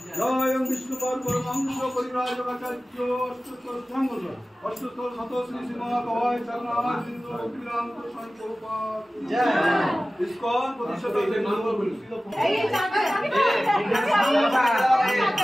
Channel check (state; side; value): normal; both; correlation 0.97